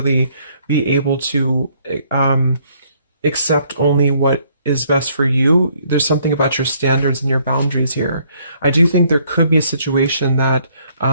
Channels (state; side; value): inverted; both; correlation -0.66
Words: be able to accept only what is best for you. There's something about your standards and your boundaries here. I do think there could be a situation that